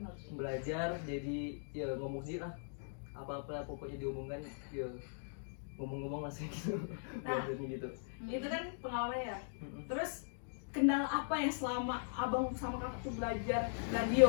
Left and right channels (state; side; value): silent; right; digital silence